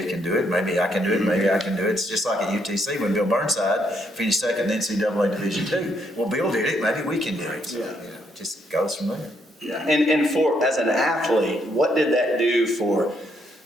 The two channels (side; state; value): both; normal; correlation 0.74